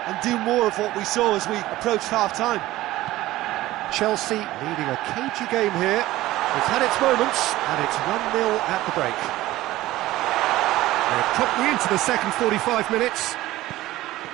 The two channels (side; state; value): left; quieter; 16.6 dB